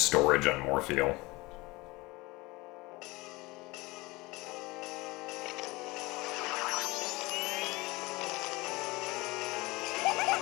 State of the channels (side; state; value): right; quieter; 22.5 dB